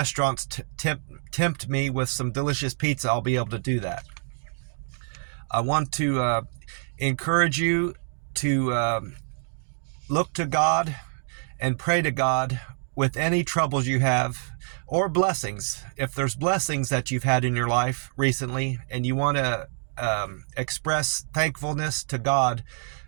tempt me with some delicious pizza, I'll be able to do that. I want to encourage you to look to God and pray to God with any troubles you have, or blessings. If there's blessings that you've had in your life recently and you want to express thankfulness to God,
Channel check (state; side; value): silent; left; digital silence